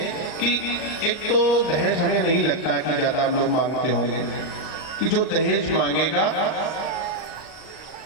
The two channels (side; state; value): right; late; 39 ms